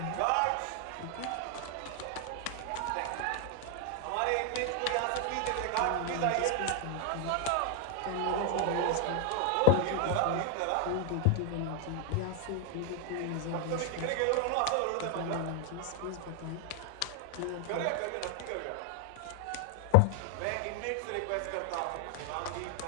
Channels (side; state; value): both; different; correlation 0.00